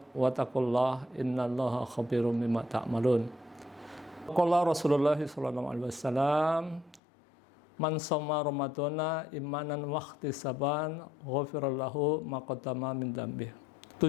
wa taqullaha innallaha khabirum bima ta'malun. Qala Rasulullah sallallahu alaihi wasallam, man shoma ramadhana imanan wa ihtisaban ghufira lahu ma qaddama min dzambih.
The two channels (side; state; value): right; drops out; at 7.0 s